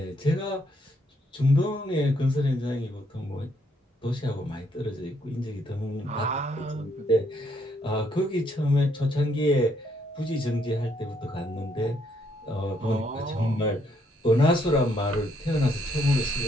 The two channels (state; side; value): normal; both; correlation 0.71